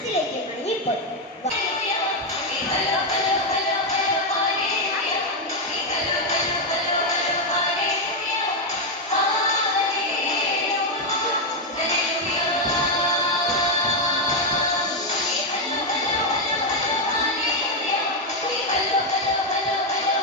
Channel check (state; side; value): normal; both; correlation 0.04